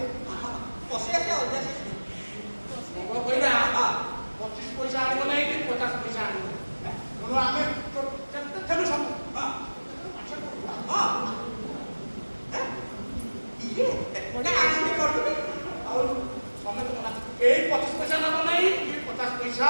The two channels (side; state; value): both; inverted; correlation -1.00